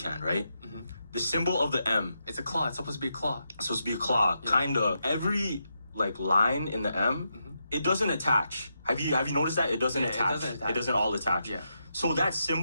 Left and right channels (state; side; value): inverted; both; correlation -0.84